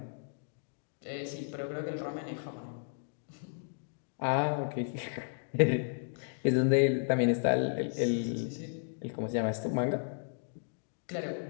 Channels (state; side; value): silent; right; digital silence